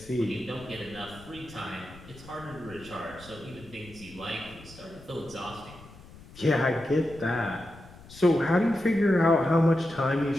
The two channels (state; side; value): noise; left; rumble, 19 dB below the sound